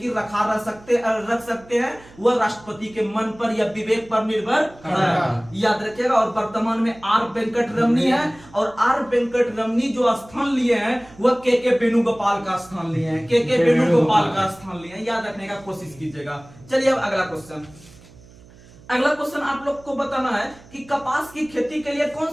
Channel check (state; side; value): noise; right; hum, 23 dB below the sound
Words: रख सकते हैं, वह राष्ट्रपति के मन पर या विवेक पर निर्भर है। याद रखिएगा। और वर्तमान में आर वेंकट रमनी है, और आर वेंकट रमनी जो स्थान लिए हैं वह के वेणुगोपाल का स्थान लिए हैं। याद रखने का कोशिश कीजिएगा। चलिए अब अगला क्वेश्चन आप लोग को बताना है कि कपास की खेती के लिए कौन